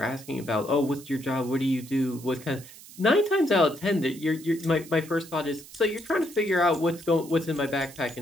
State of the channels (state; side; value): noise; right; hiss, 18 dB below the sound